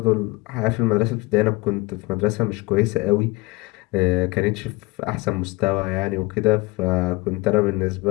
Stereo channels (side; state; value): right; quieter; 23.4 dB